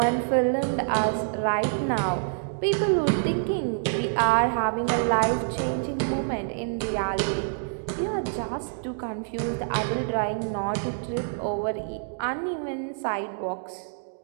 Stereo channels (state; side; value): silent; left; digital silence